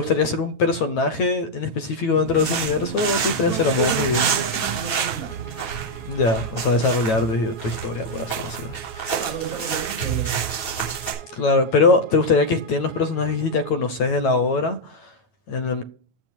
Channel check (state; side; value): late; right; 9.1 ms